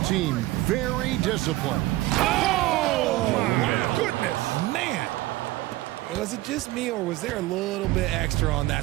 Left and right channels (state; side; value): quieter; left; 18.1 dB